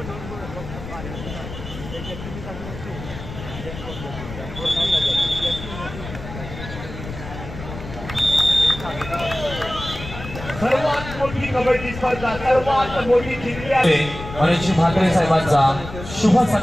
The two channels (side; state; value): left; noise; rumble, 11 dB below the sound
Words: सर्वात मोठी कबड्डी स्पर्धा, सर्वात मोठी जिंकली आहे. मनीष म्हात्रे साहेबांचा शुभ